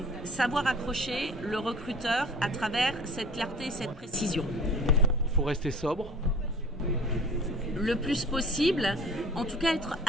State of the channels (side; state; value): both; normal; correlation 0.44